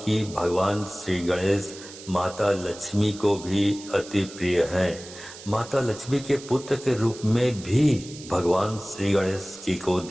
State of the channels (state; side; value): noise; right; hiss, 16 dB below the sound